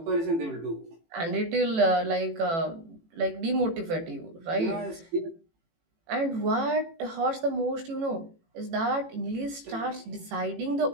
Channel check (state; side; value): late; left; 18 ms